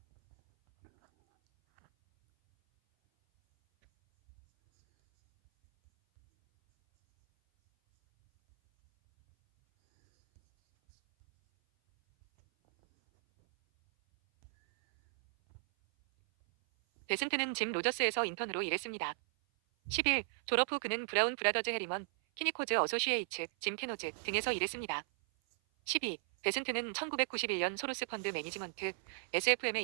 베센트는 짐 로저스에서 인턴으로 일했습니다. 11. 졸업 후 그는 브라운 브라더즈 해리먼, 키니코즈 어소시에이츠, 짐 캐노즈 등에서 일했습니다. 12. 베슨트는 1991년 소로스 펀드 매니지먼트 SFM에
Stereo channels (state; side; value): silent; left; 54 dB below the other